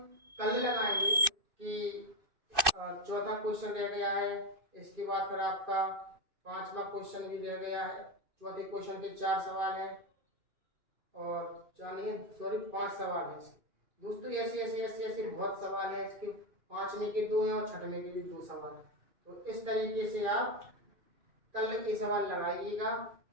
कल लगाएंगे कि चौथा क्वेश्चन रह गया है, इसके बाद फिर आपका 5वां क्वेश्चन भी रह गया है। चौथे क्वेश्चन के 4 सवाल है और 5 सवाल है दोस्तों। ऐसे बहुत सवाल है, इसके 5वें के 2 हैं और 6वें के भी 2 सवाल है। तो इस तरीके से आप कल के सवाल लगाइएगा,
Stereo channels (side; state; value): left; late; 2.6 ms